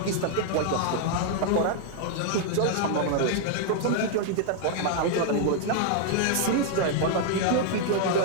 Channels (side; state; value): both; different; correlation 0.00